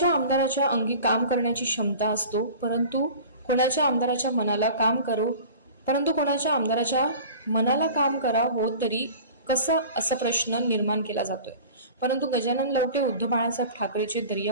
आमदाराच्या अंगी काम करण्याची क्षमता असतो, परंतु कोणाच्या आमदाराच्या मनाला काम करा हो तरी कसं असा प्रश्न निर्माण केला जातोय। परंतु गजानन लवटे उद्धव बाळासाहेब ठाकरेचे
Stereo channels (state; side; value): inverted; both; correlation -0.41